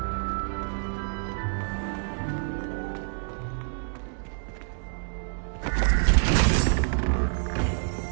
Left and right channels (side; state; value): left; silent; 60 dB below the other